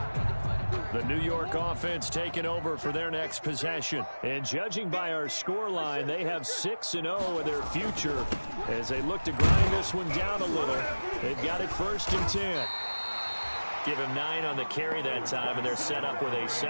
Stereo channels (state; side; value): inverted; both; correlation -1.00